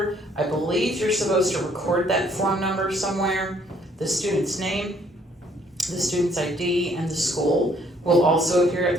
I believe you're supposed to record that form number somewhere, the student's name, the student's ID, and the school will also appear at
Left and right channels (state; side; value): normal; both; correlation 0.64